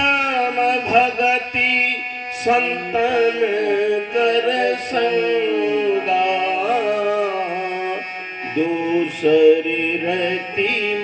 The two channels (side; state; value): both; identical; correlation 1.00